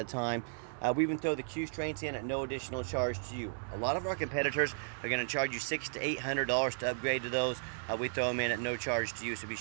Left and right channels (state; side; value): silent; left; digital silence